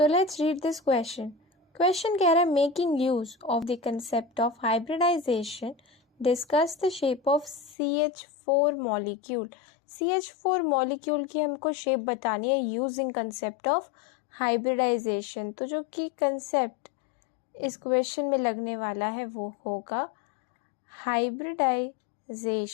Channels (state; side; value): drops out; right; at 7.8 s